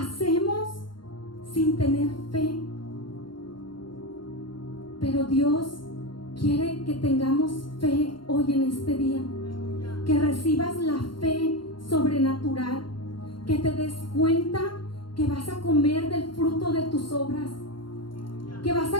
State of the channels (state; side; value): late; right; 0.72 ms